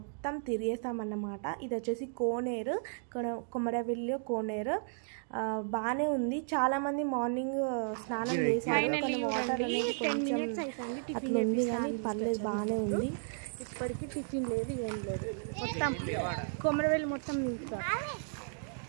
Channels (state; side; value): silent; left; digital silence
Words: తిరిగేస్తామన్నమాట. ఇది వచ్చేసి కోనేరు, కొమరవెల్లి కోనేరు. బాగానే ఉంది. చాలామంది మార్నింగ్ స్నానం చేశారు. వాటర్ అనేది కొంచెం అట్లా ఉంది కానీ పర్లేదు, బాగానే ఉంది. ఇప్పటికీ టిఫిన్ లేదు, ఏం లేదు. మొత్తం కొమరవెల్లి మొత్తం